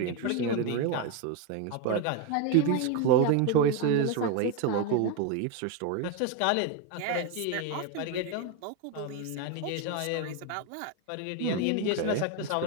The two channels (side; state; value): both; different; correlation 0.02